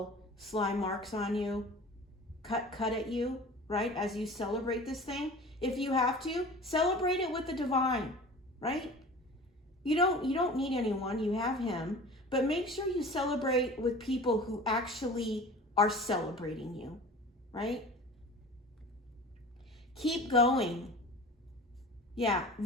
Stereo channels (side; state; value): both; normal; correlation 0.40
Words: slime marks on you, cut at you, right? As you celebrate this thing. If you have to, celebrate it with the divine, right? You don't need anyone, you have him, but make sure you celebrate with people who actually are celebrating you, right? Keep going. Yeah,